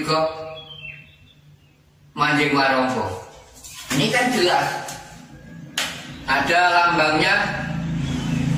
manjing warangka? Ini kan jelas. Ada lambangnya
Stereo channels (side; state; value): both; identical; correlation 1.00